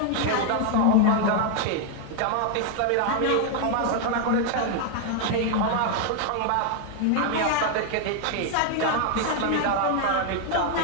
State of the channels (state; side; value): different; both; correlation 0.00